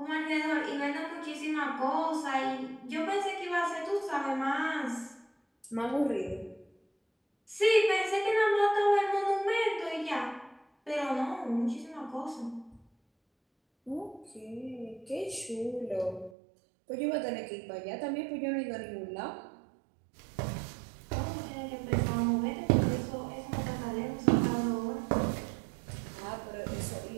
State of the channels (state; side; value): drops out; left; at 16.3 s